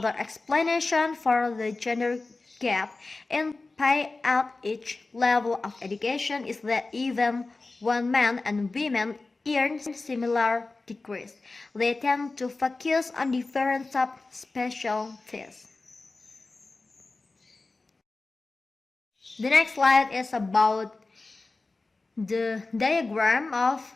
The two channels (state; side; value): quieter; right; 3.5 dB